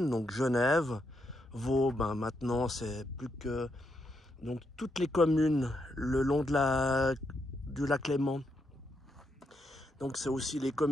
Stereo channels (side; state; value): both; normal; correlation 0.80